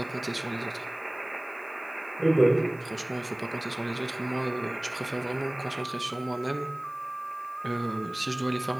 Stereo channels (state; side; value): noise; right; hiss, 27 dB below the sound